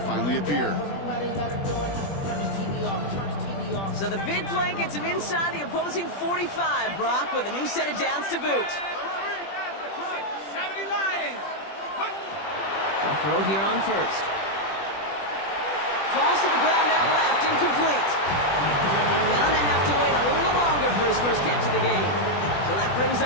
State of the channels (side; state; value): right; late; 20 ms